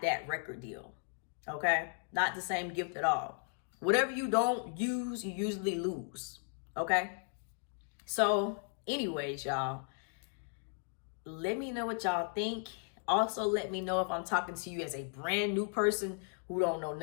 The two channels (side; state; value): right; silent; 54 dB below the other